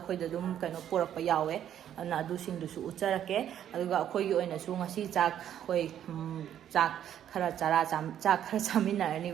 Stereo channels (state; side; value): quieter; left; 10.4 dB